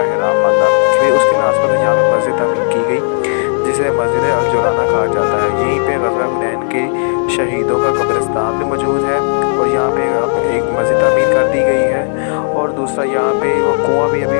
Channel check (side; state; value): right; silent; digital silence